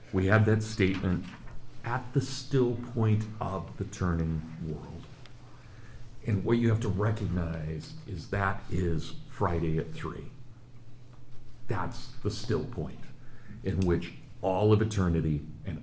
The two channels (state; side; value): identical; both; correlation 1.00